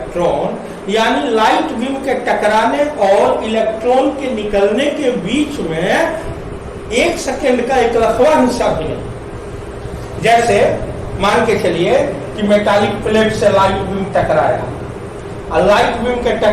यानी लाइट बीम के टकराने और इलेक्ट्रॉन के निकलने के बीच में 1 सेकेंड का एक लखवा हिस्सा भी नहीं। जैसे मान के चलिए कि मेटालिक प्लेट से लाइट बीम टकराया, और लाइट बीम के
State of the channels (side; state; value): both; identical; correlation 1.00